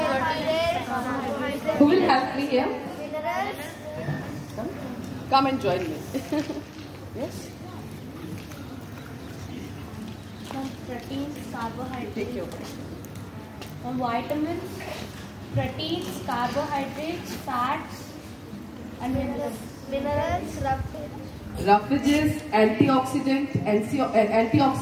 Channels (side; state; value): both; identical; correlation 1.00